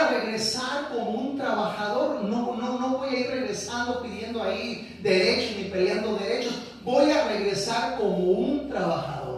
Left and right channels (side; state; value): both; identical; correlation 1.00